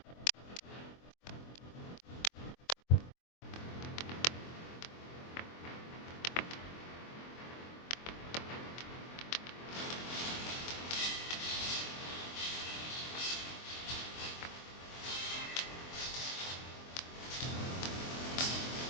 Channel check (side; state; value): right; late; 23 ms